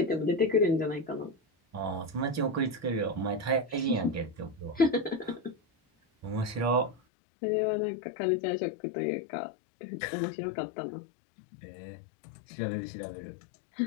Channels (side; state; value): right; drops out; at 7.0 s